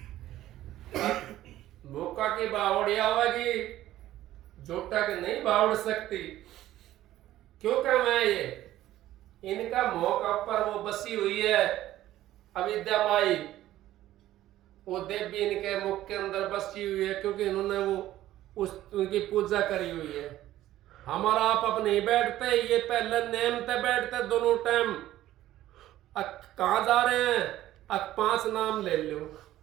भूखा की बावड़िया होगी, झूठा की नहीं बावड़ सकती। क्यों कह मैं ये इनका मौका पर वो बसी हुई है अविद्या माई, वो देवी इनके मुख के अंदर बसी हुई है, क्योंकि इन्होंने वो उनकी पूजा करी हुई है। हमारा आप अब नहीं बैठते, ये पहले नेम पे बैठते दोनों टाइम। कहाँ जा रहे हैं? 5 नाम ले लो,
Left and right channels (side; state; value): left; quieter; 14.1 dB